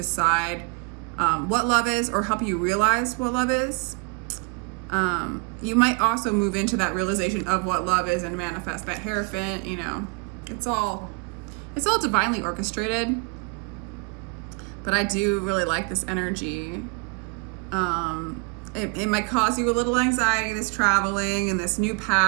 what love is, or help you realize what love is. You might also move into that realization of what love is and manifest that Hierophant. You know, it's all divinely orchestrated. But I do really like this energy. It might cause you a little anxiety, this traveling and this new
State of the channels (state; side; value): quieter; left; 30.7 dB